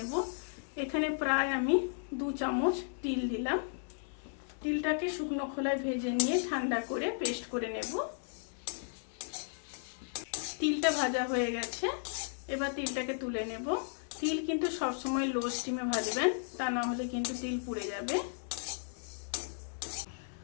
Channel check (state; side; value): silent; right; digital silence